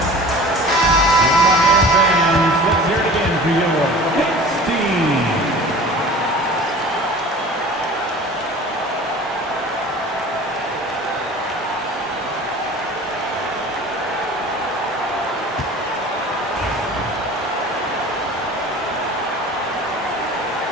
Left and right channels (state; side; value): normal; both; correlation 0.41